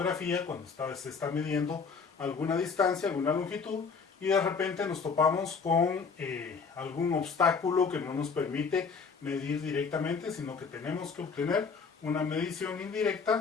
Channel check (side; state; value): right; quieter; 5.3 dB